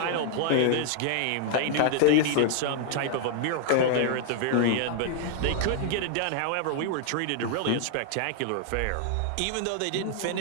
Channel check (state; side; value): different; both; correlation 0.00